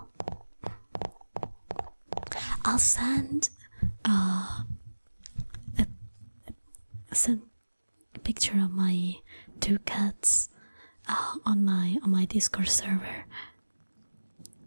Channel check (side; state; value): both; inverted; correlation -1.00